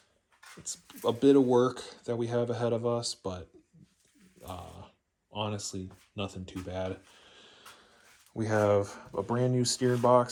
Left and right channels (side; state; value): both; identical; correlation 1.00